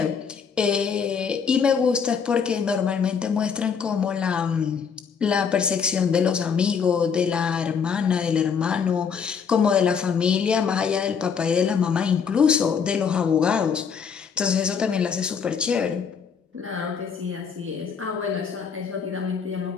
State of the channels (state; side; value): quieter; right; 6.5 dB